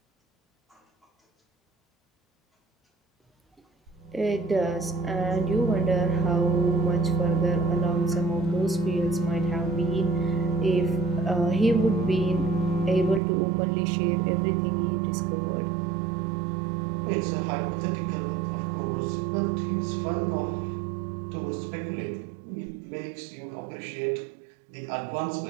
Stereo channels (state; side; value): drops out; left; at 13.2 s